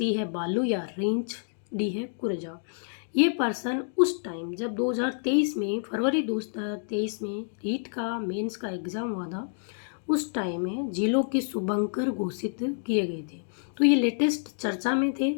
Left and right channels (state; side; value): silent; right; digital silence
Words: है बालू या रींछ, डी है कुरजा। ये पर्सन उस टाइम जब 2023 में फरवरी 2023 में रीट का मेंस का एग्ज़ाम हुआ था, उस टाइम में जिलों के शुभंकर घोषित किए गए थे। तो ये लेटेस्ट चर्चा में